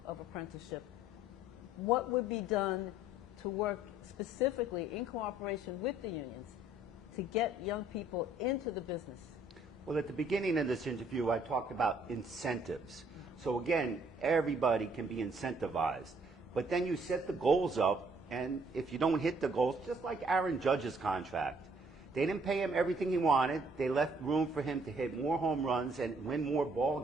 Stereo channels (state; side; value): normal; both; correlation 0.63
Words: of apprenticeship, what would be done to work specifically in cooperation with the unions to get young people into the business? Well, at the beginning of this interview, I talked about incentives. So again, everybody can be incentivized. But then you set the goals up, and if you don't hit the goals, just like Aaron Judge's contract, they didn't pay him everything he wanted. They left room for him to hit more home runs and win more ball